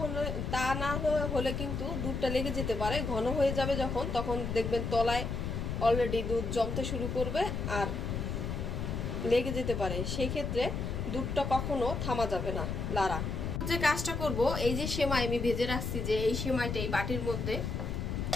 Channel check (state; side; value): noise; left; rumble, 3 dB below the sound